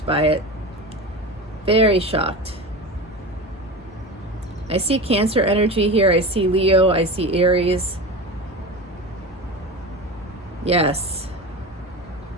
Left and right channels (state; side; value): normal; both; correlation 0.28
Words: by it. Very shocked. I see Cancer energy here. I see Leo. I see Aries. Yes.